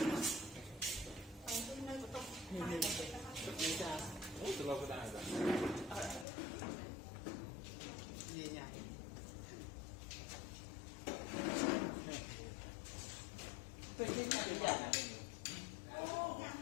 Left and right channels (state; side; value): drops out; right; at 6.2 s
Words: từ lâu cái đài rồi gì nhỉ tôi cái này bây giờ